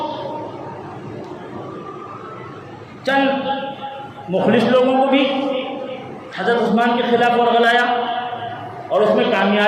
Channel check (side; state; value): both; identical; correlation 1.00